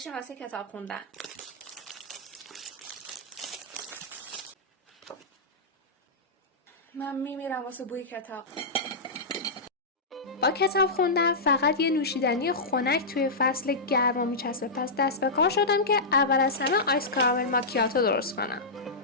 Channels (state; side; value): quieter; right; 3.0 dB